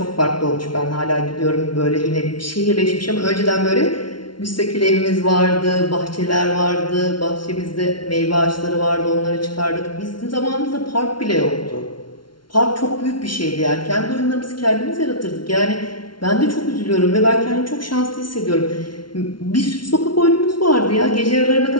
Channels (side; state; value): right; late; 0.72 ms